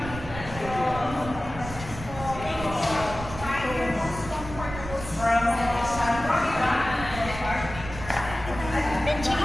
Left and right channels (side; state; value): right; noise; rumble, 10 dB below the sound